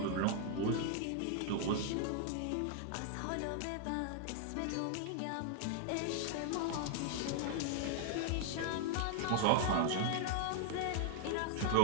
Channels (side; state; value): both; different; correlation 0.00